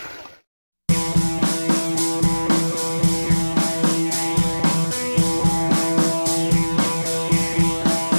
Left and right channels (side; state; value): both; inverted; correlation -1.00